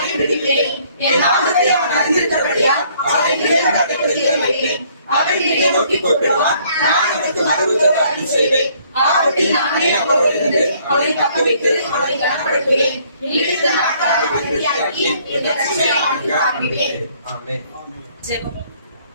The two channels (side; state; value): both; inverted; correlation -0.63